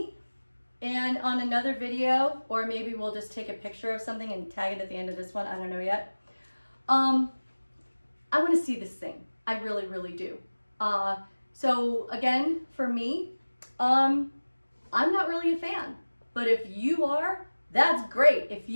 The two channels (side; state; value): both; inverted; correlation -1.00